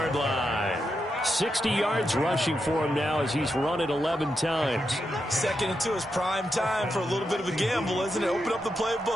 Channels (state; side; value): normal; both; correlation 0.85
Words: line. 60 yards rushing for him now as he's run it 11 times. 2nd and 2 is prime time for a little bit of a gamble, isn't it? Open up the